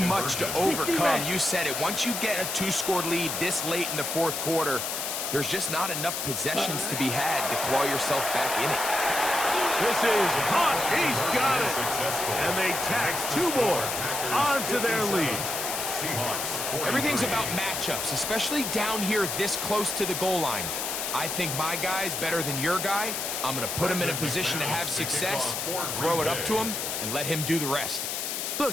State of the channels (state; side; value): noise; left; hiss, 3 dB below the sound